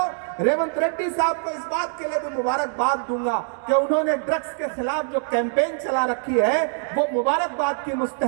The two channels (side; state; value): left; silent; 59 dB below the other